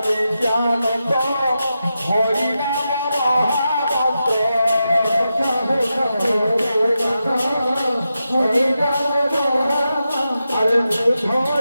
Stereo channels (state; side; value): inverted; both; correlation -0.89